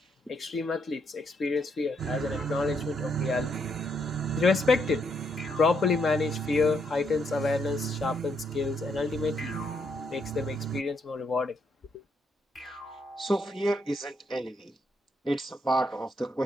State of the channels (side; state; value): both; normal; correlation 0.76